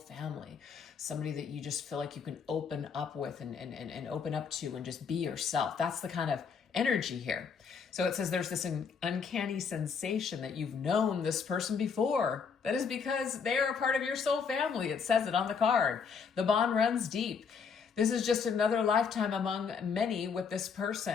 somebody that you just feel like you can open up with and open up to and just be yourself. That's the kind of energy here. So it says there's this uncanny sensation that you've known this person before. That is because they are a part of your soul family. It says it on the card. The bond runs deep. This is just another lifetime among many with this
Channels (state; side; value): quieter; right; 6.0 dB